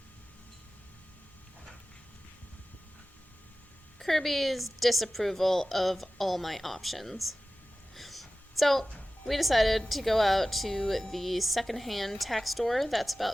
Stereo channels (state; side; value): normal; both; correlation 0.96